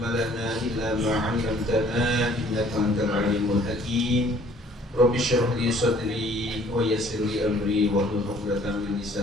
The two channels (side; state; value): both; normal; correlation 0.56